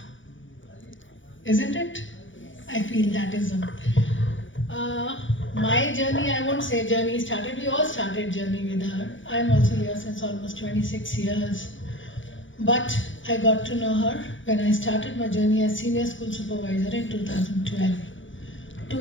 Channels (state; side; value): late; right; 0.56 ms